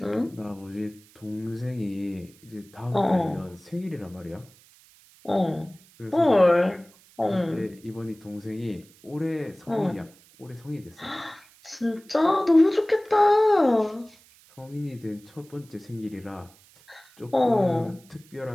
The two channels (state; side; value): noise; right; hiss, 27 dB below the sound